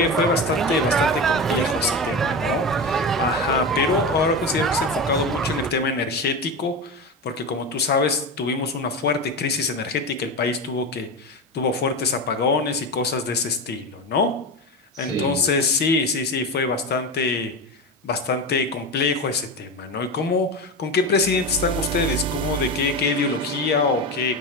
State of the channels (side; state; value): both; normal; correlation 0.21